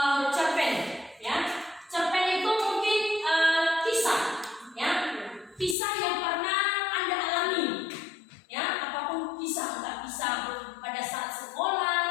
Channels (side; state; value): right; drops out; at 5.8 s